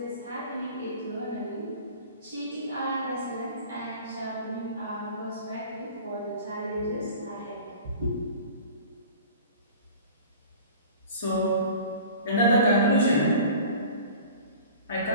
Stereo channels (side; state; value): both; inverted; correlation -0.42